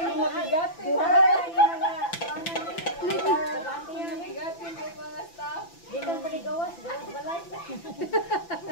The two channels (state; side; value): late; right; 5.9 ms